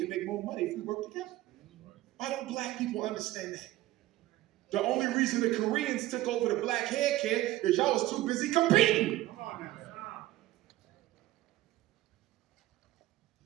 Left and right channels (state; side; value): quieter; left; 16.1 dB